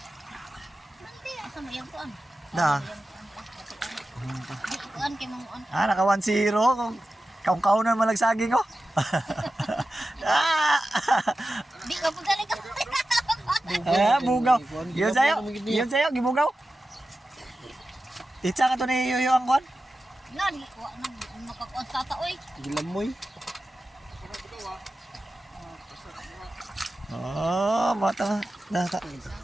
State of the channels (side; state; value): both; normal; correlation 0.93